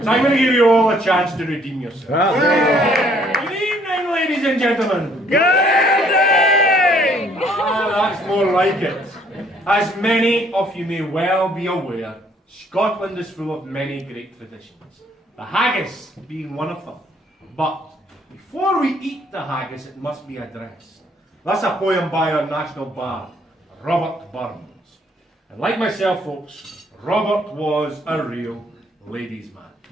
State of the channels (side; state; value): both; normal; correlation 0.63